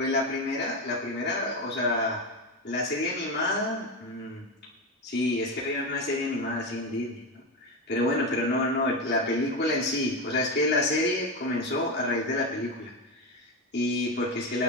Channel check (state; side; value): normal; both; correlation 0.16